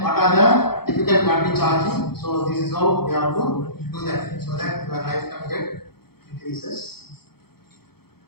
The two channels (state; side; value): late; right; 0.96 ms